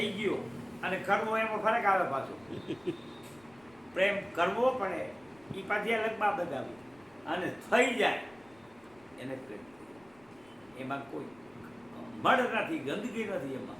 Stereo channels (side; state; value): left; noise; rumble, 29 dB below the sound